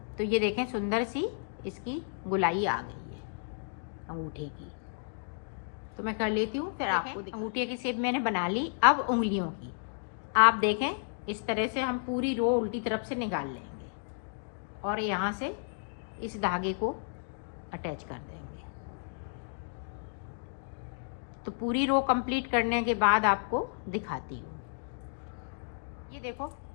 तो ये देखें सुंदर सी इसकी गुलाई आ गई है अंगूठे की। तो मैं कर लेती हूँ फिर आपको। अंगूठे की शेप मैंने बना ली। अब उंगलियों की आप देखें इस तरह से हम पूरी रो उल्टी तरफ से निकाल लेंगे और यहाँ से इस धागे को अटैच कर देंगे। तो पूरी रो कंप्लीट करने के बाद आपको दिखाती हूँ। देखो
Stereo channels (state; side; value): silent; right; digital silence